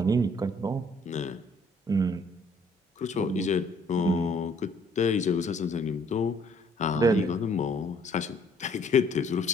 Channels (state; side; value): normal; both; correlation 0.62